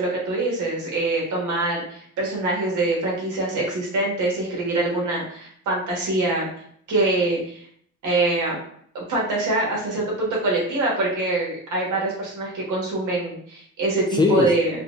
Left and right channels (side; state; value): both; normal; correlation 0.21